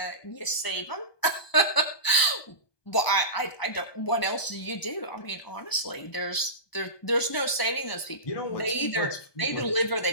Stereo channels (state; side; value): late; right; 1.0 ms